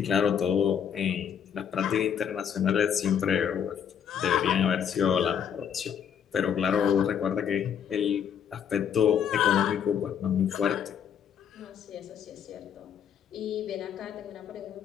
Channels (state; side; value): quieter; right; 8.3 dB